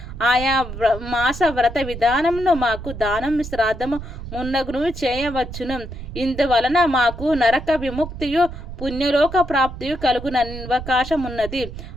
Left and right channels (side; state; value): right; noise; rumble, 11 dB below the sound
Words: ఆయా మాస వ్రత విధానమును మాకు దానం శ్రాద్ధము మున్నగును చేయవచ్చును. ఇందువలన మాకు నరక విముక్తియు పుణ్యలోక ప్రాప్తియు కలుగున అవకాశం ఉన్నది.